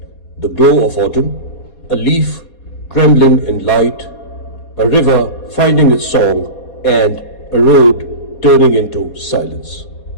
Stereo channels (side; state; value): right; late; 4.2 ms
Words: the glow of autumn, a leaf trembling in light, a river finding its song, and a road turning into silence.